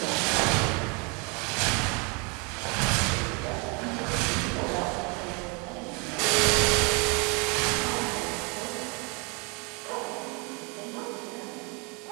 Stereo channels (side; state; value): left; quieter; 31.9 dB